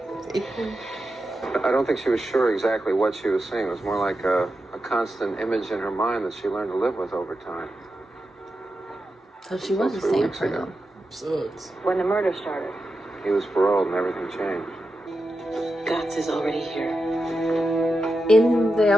I don't think she was sure exactly what she was seeing. It was more like a constant image in her mind that she learned to live with over time. So she was the 3 same weeks ago. person. Sucks. When the murder started. He was paroled and everything changed. Gotts is already here. In the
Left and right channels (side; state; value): both; normal; correlation 0.89